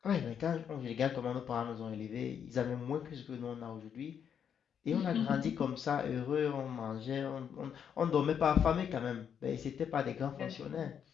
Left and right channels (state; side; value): quieter; right; 8.0 dB